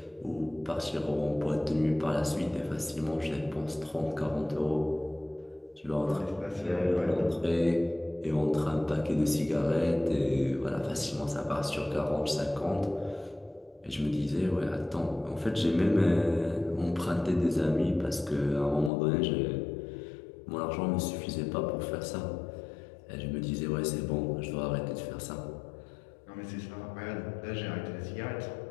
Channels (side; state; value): right; drops out; at 18.9 s